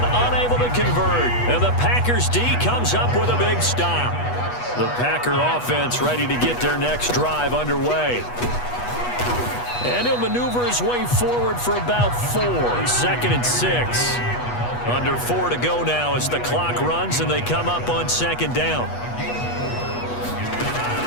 unable to convert. And the Packers D comes up with a big stop. The Packer offense ready to get their next drive underway. And he'll maneuver his way forward for about 4. 2nd and 6. Under 4 to go now as the clock runs, and they come up on 2nd down.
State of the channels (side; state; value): right; late; 8.2 ms